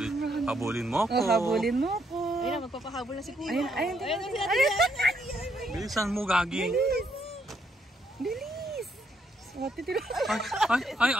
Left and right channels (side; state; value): both; normal; correlation 0.73